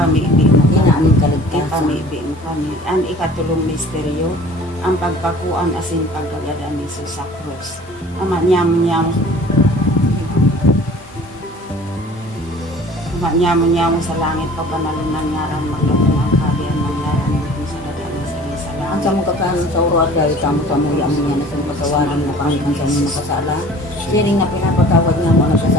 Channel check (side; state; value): both; normal; correlation 0.47